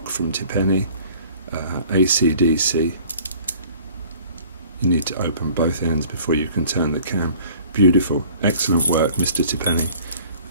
from Tipene, AC/DC. You need to open both ends before you can turn the cam. Beautiful, excellent work, Mr. Tipene.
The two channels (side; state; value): both; inverted; correlation -0.50